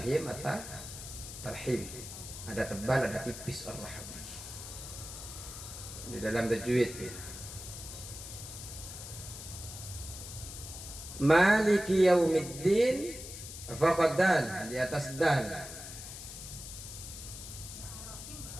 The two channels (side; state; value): left; noise; hiss, 11 dB below the sound